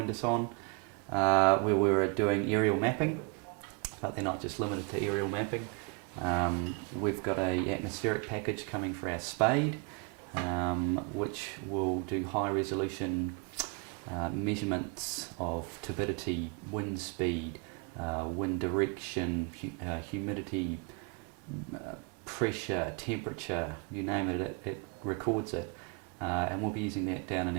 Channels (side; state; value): left; quieter; 33.9 dB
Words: us on, where we were doing aerial mapping, but they're not just limited to aerial mapping. We've got an atmospheric package coming for our spade, which will do high resolution measurements of turbidity, wind speed, wind direction, humidity, pressure, temperature, you name it, it records it. And we'll be using that down in